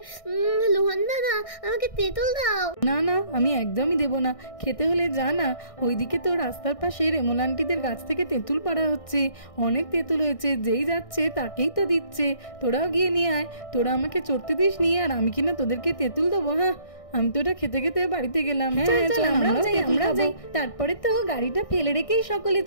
লোহান দাদা আমাকে তেঁতুল দাও। না না আমি একদমই দেবো না, খেতে হলে যা না, ওইদিকে তো রাস্তার পাশে রেমল আন্টিদের গাছ থেকে তেঁতুল পাড়া হচ্ছে, অনেক তেঁতুল হয়েছে, যেই যাচ্ছে তাকেই তো দিচ্ছে। তোরাও গিয়ে নিয়ে আয়, তোরা আমাকে চড়তে দিস নি, আর আমি কিনা তোদেরকে তেঁতুল দেবো? হ্যাঁ আমি তো এটা খেতে খেতে বাড়িতে গেলাম। হ্যাঁ চল আমরাও যাই। তারপরে তো গাড়িটা ফেলে রেখেই সকলে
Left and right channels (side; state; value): right; late; 1.6 ms